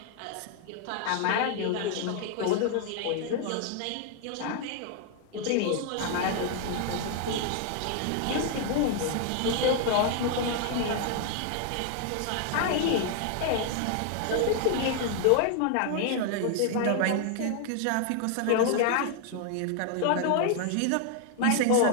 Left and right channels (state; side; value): different; both; correlation 0.00